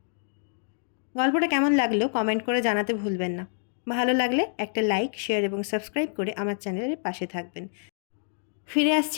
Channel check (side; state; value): right; silent; digital silence